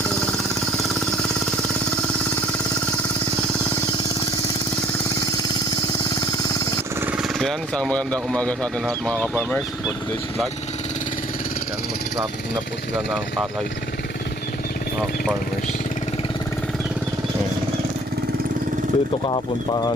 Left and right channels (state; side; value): normal; both; correlation 0.56